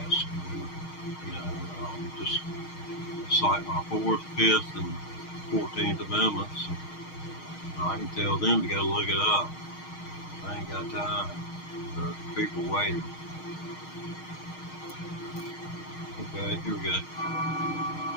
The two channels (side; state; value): right; late; 6.4 ms